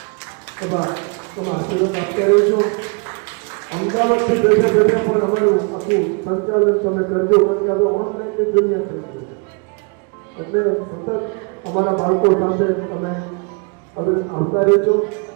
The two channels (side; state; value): left; quieter; 35.1 dB